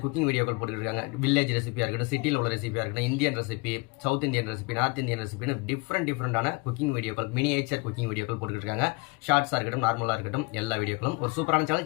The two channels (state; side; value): quieter; right; 28.1 dB